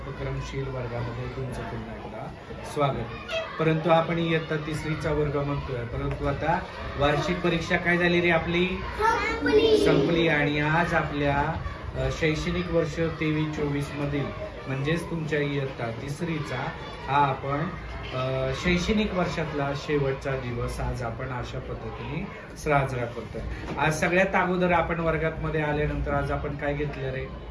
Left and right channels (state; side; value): identical; both; correlation 1.00